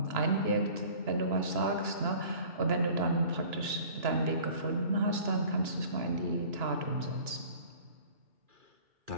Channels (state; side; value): late; left; 2.9 ms